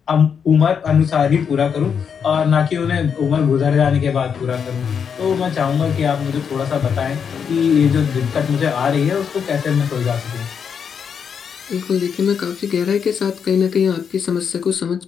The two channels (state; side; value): quieter; right; 7.0 dB